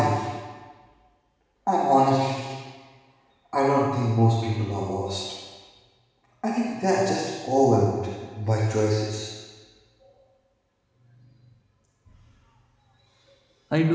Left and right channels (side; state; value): both; identical; correlation 1.00